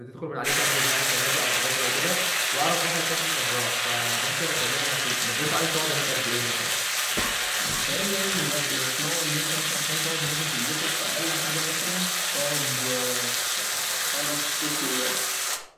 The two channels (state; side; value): identical; both; correlation 1.00